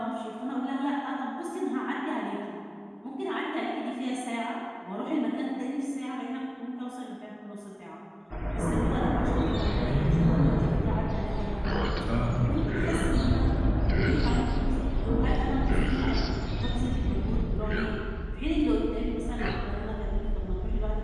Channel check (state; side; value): identical; both; correlation 1.00